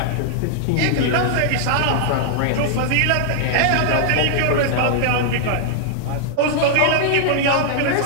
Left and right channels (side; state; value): both; different; correlation -0.01